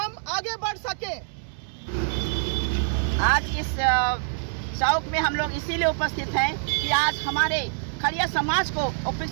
आगे बढ़ सकें। आज इस चौक में हम लोग इसीलिए उपस्थित हैं कि आज हमारे खड़िया समाज को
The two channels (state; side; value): silent; left; digital silence